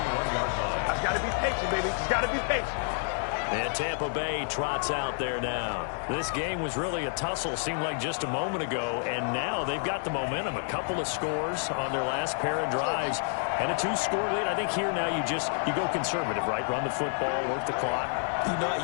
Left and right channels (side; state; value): right; silent; 58 dB below the other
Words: And Tampa Bay trots out there now. This game was really a tussle, seemed like just a moment ago, and now they've got the momentum. A couple of scores on their last pair of drives, and a 2-score lead. I think here now you go conservative, right? Run the football, work the clock. You know, I